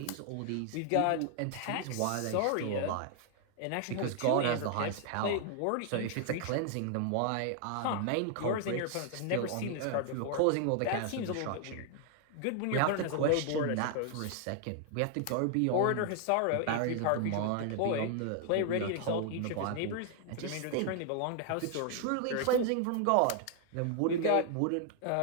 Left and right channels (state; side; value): different; both; correlation 0.00